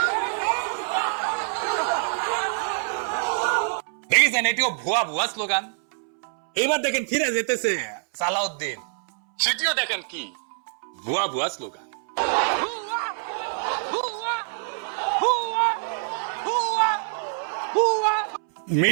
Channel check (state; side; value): silent; left; 62 dB below the other